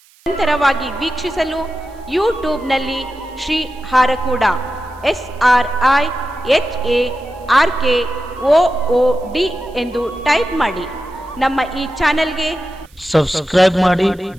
ನಿರಂತರವಾಗಿ ವೀಕ್ಷಿಸಲು ಯೂಟ್ಯೂಬ್ನಲ್ಲಿ ಶ್ರೀ ಹಾರಕೂಡ SRIHARKOOD ಎಂದು ಟೈಪ್ ಮಾಡಿ. ನಮ್ಮ ಈ ಚಾನೆಲ್ಗೆ ಸಬ್ಸ್ಕ್ರೈಬ್ ಮಾಡಿ,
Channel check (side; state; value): right; noise; hiss, 30 dB below the sound